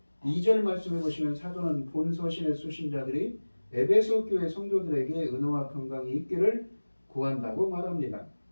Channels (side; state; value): both; inverted; correlation -1.00